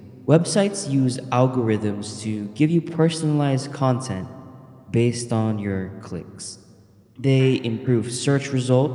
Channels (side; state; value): both; identical; correlation 1.00